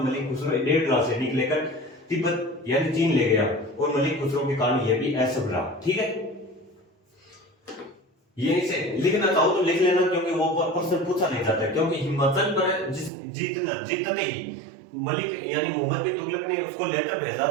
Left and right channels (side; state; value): left; drops out; at 13.1 s